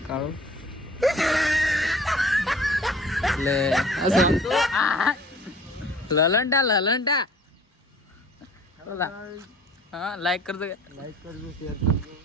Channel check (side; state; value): both; normal; correlation 0.49